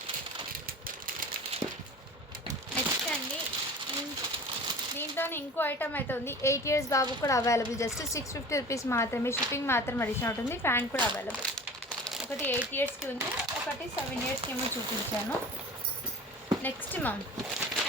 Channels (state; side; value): normal; both; correlation 0.39